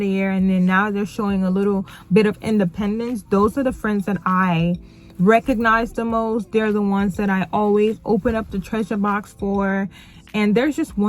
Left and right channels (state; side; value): identical; both; correlation 1.00